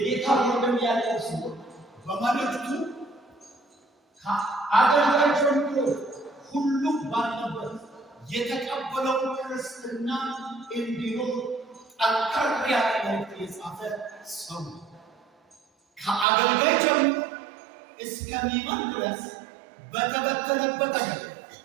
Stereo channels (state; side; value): drops out; left; at 16.2 s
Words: ወንድም ያዕቆብ ሲሆን በመልእክቱ ከአገልጋይ ጀምሮ ሁሉም ባለበት የተቀበለው ክርስትና እንዲኖር ጠንከር ያለ መልእክት የጻፈ ሰው ከአገልጋይ ጀምሮ እስከሚመን ድረስ በተበተነበት አገር